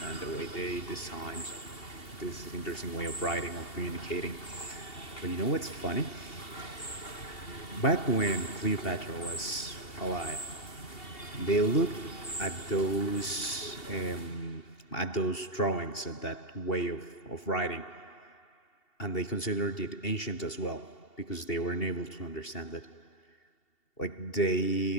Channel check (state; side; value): late; right; 2.7 ms